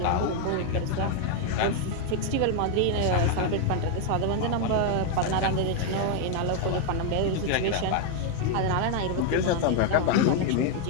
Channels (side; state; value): both; different; correlation 0.01